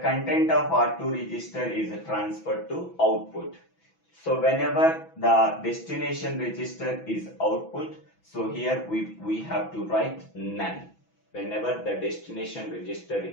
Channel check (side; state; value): right; late; 6.1 ms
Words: content of R2 register is transferred to output. So whenever the destination register is output, so here we have to write none. Whenever the destination register